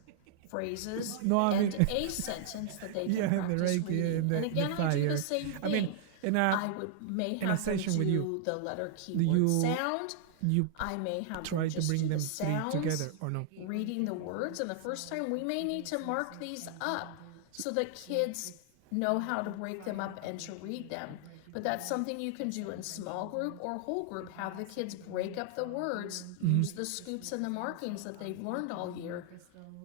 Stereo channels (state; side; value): different; both; correlation -0.01